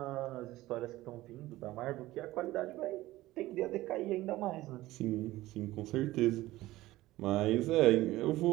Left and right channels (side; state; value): left; quieter; 17.1 dB